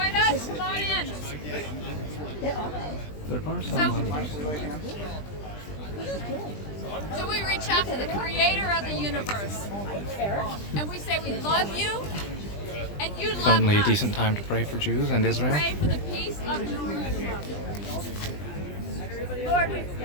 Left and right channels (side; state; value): right; late; 20 ms